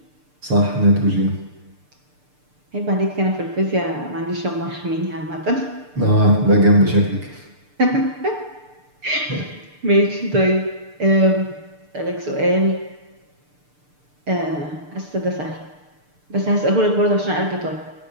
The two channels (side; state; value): left; late; 6.7 ms